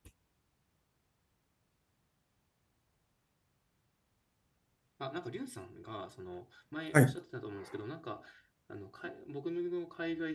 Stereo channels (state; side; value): identical; both; correlation 1.00